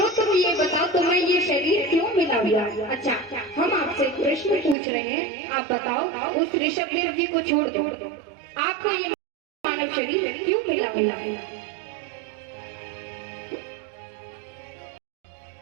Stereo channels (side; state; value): left; drops out; at 4.8 s